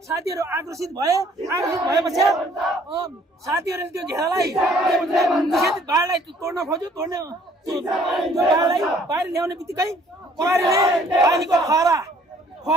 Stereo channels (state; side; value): normal; both; correlation 0.59